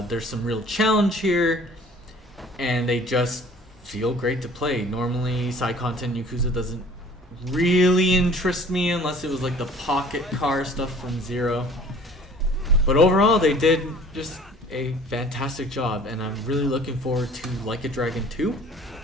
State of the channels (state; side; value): normal; both; correlation 0.50